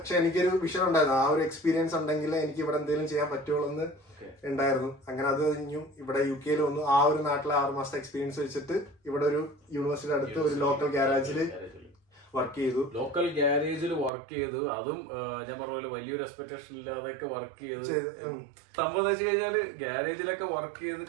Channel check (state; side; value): drops out; left; at 14.1 s